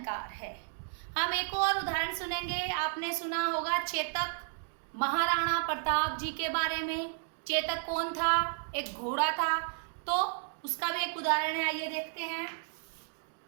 है। हम एक और उदाहरण सुनेंगे। आपने सुना होगा चेतक, महाराणा प्रताप जी के बारे में। चेतक कौन था? एक घोड़ा था, तो उसका भी एक उदाहरण है, आइए देखते हैं।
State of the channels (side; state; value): left; silent; digital silence